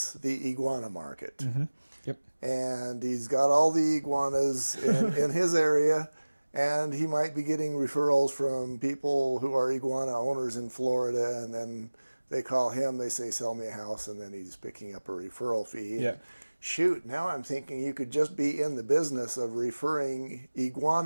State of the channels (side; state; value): both; inverted; correlation -1.00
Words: the iguana market. Mm-hmm. Yep. And he's got all the iguanas in his area, and he might be getting referrals from people who are iguana owners in Florida, and then they call him, they say, sell me a house, and then he's picking up a referral fee. Yeah. And shoot, now I'm thinking you could just be in the business of referring